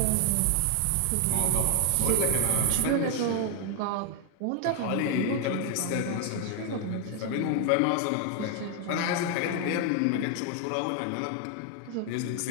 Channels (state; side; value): different; both; correlation 0.00